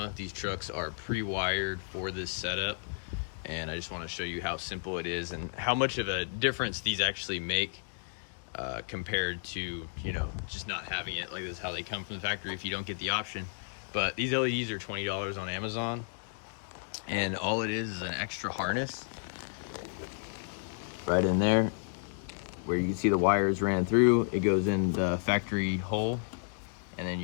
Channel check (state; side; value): silent; right; digital silence